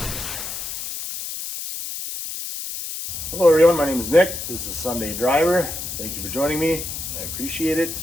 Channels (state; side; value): noise; left; hiss, 6 dB below the sound